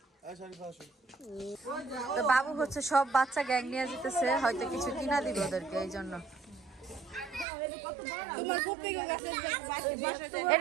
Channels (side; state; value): left; drops out; at 7.5 s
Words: তো বাবু হচ্ছে সব বাচ্চা গ্যাং নিয়ে যেতেছে হয়তো কিছু কিনা দিবে ওদেরকে এই জন্য